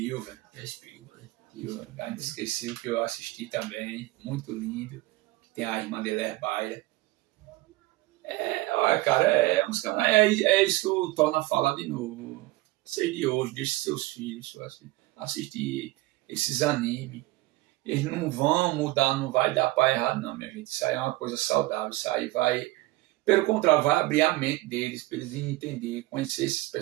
A gente esqueceu que eu assisti também, muito lindo. Tem a irmã dele, Herbaia. Olha, cara, uns canais, é isso que eu torno a falar de novo. Sei de hoje, deixe seus filhos assistir esses animes. Eles não vão mudar, não vai dar para errado, não, minha gente. Isso aí é uma coisa saudável. Isso aí vai, pelo contrário, vai abrir a mente deles, para eles entender, conhecer esses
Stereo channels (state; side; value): quieter; left; 19.2 dB